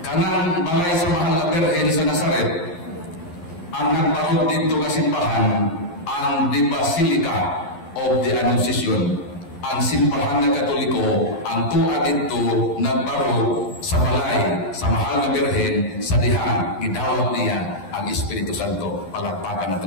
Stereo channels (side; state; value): right; late; 11 ms